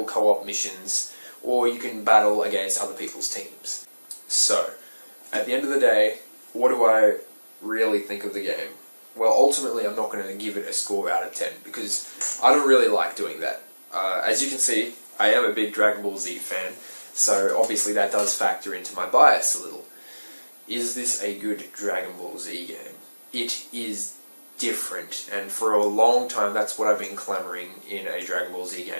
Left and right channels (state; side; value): inverted; both; correlation -1.00